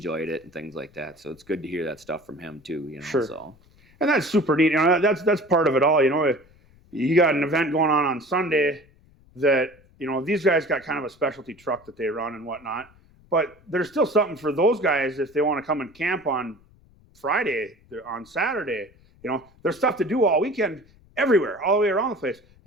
it and things like that. So it's good to hear that stuff from him too, Sure. So. And that's super neat. That's part of it all. You got an event going on Sunday that, these guys got kind of a specialty truck that they run and whatnot, but there's still something for those guys if they want to come and camp on Friday, on Saturday. There's stuff to do all weekend everywhere, all the way around the place.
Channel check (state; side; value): noise; left; rumble, 29 dB below the sound